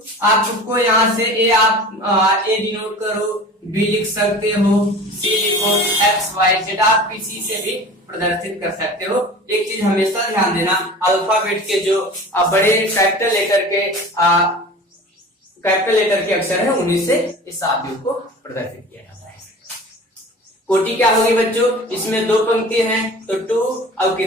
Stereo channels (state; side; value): normal; both; correlation 0.39